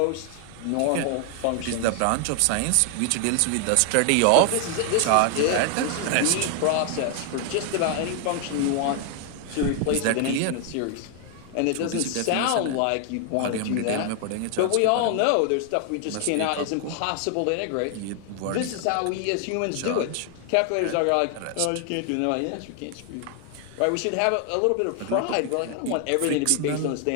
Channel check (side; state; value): both; different; correlation 0.00